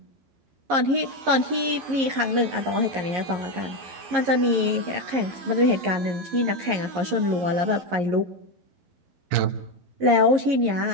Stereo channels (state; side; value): late; left; 11 ms